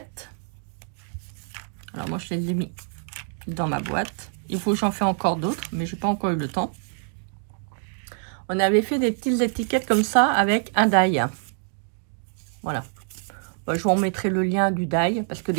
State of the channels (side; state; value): left; silent; 60 dB below the other